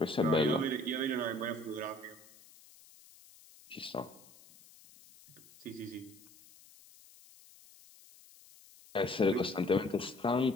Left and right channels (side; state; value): left; noise; hiss, 24 dB below the sound